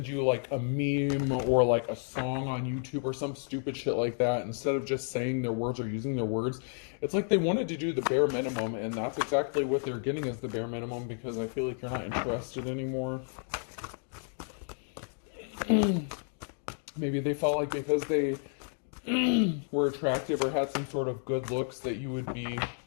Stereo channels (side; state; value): right; silent; 57 dB below the other